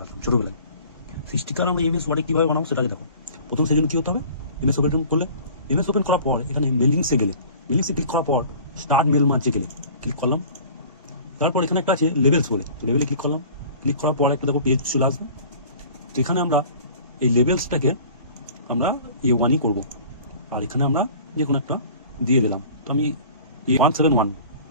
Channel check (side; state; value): both; inverted; correlation -0.46